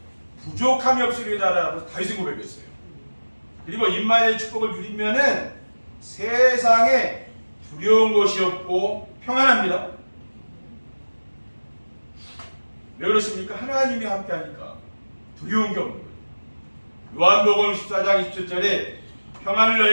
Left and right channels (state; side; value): inverted; both; correlation -1.00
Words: 부족함이 없으리다라고 다윗이 고백했어요. 그리고 임마누엘의 축복을 누리면은 세상에 두려운 것이 없고 평안합니다. 왜 그렇습니까? 하나님이 함께하니까 두려운 게 없는 거예요. 요한복음 14장 27절에 평안을